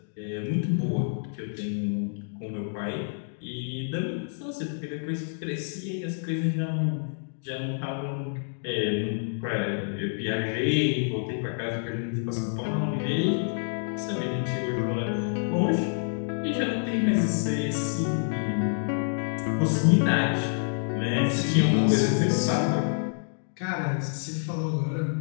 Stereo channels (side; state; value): right; silent; digital silence